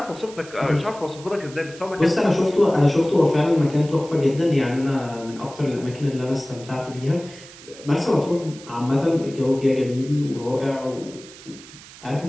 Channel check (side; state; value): right; noise; hiss, 19 dB below the sound